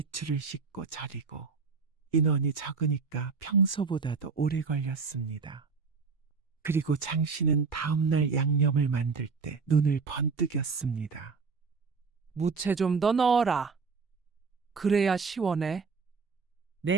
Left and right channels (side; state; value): left; quieter; 4.9 dB